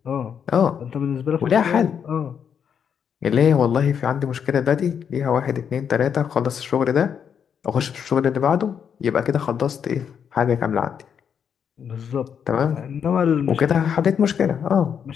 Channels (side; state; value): right; quieter; 7.6 dB